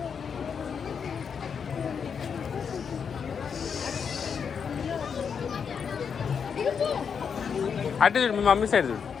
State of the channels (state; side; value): quieter; right; 6.6 dB